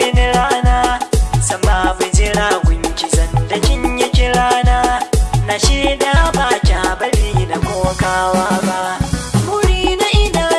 rana san babu jira gunki zan da kin yi kirana na shaida ba kya bari na kokawa ba muri na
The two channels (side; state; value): both; identical; correlation 1.00